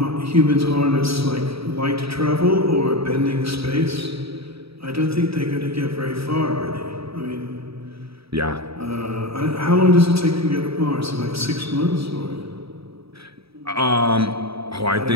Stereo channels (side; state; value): left; late; 0.77 ms